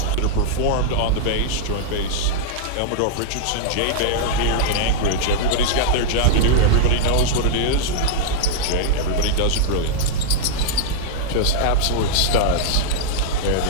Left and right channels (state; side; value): different; both; correlation -0.02